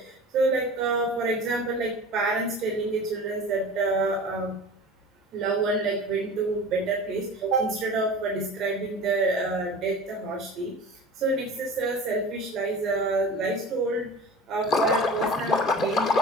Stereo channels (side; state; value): both; normal; correlation 0.36